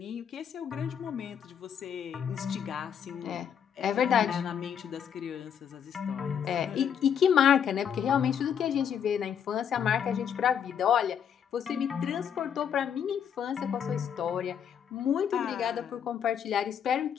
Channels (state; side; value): quieter; right; 8.2 dB